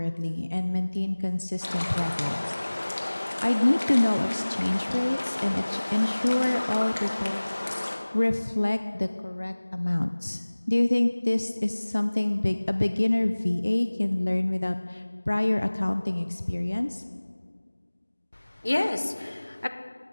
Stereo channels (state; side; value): inverted; both; correlation -1.00